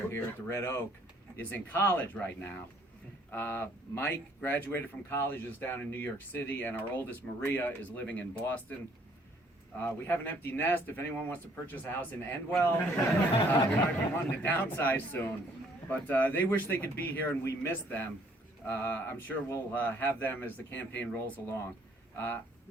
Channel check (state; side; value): normal; both; correlation 0.62